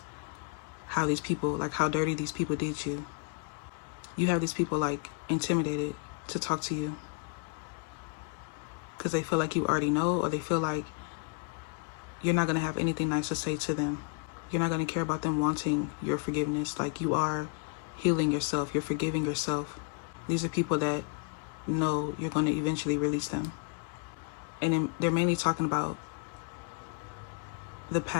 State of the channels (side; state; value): right; quieter; 34.3 dB